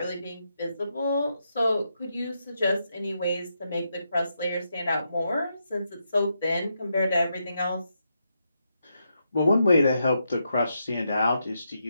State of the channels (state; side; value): inverted; both; correlation -0.82